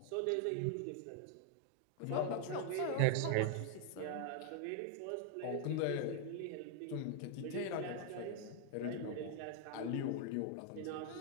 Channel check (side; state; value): both; different; correlation 0.00